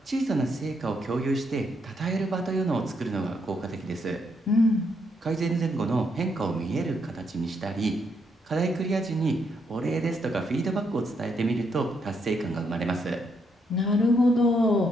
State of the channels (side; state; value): both; normal; correlation 0.76